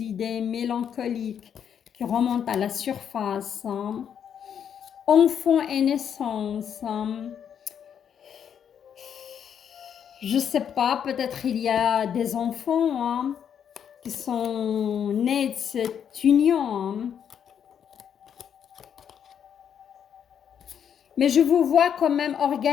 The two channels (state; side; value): quieter; right; 8.3 dB